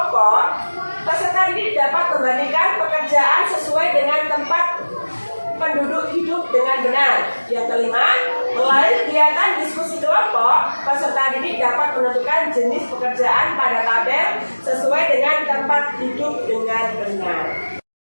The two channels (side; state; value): both; inverted; correlation -1.00